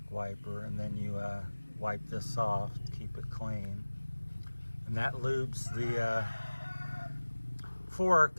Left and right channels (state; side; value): inverted; both; correlation -1.00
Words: wiper, and then you wipe this off to keep it clean. And that lubes the